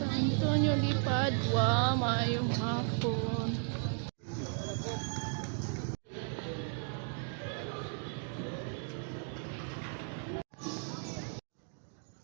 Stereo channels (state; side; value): silent; left; 54 dB below the other